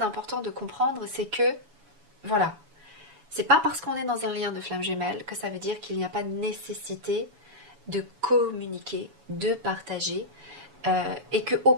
de comprendre, c'est que, voilà, c'est pas parce qu'on est dans un lien de flamme jumelle que ça veut dire qu'il n'y a pas de nécessité de communiquer, de partager, et que au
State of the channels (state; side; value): late; left; 7.1 ms